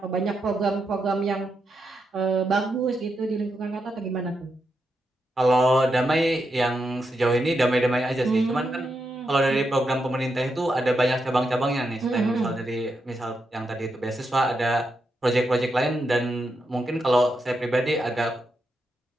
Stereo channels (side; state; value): both; normal; correlation 0.84